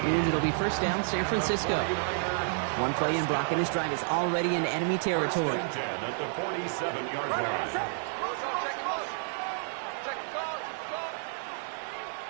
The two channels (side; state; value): left; silent; 56 dB below the other